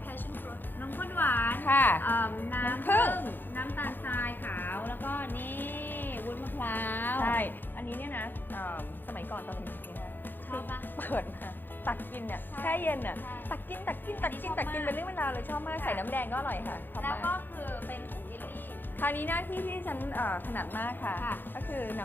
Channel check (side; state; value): right; late; 0.093 ms